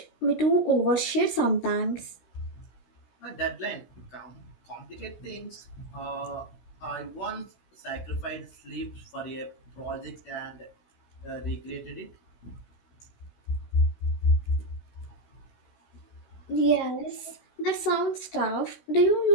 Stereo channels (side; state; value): right; late; 16 ms